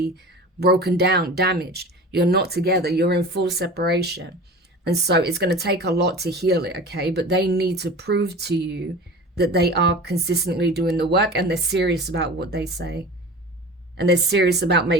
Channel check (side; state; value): both; normal; correlation 0.36